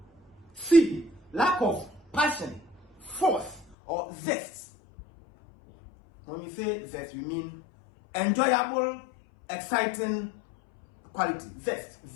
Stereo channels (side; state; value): right; drops out; at 3.8 s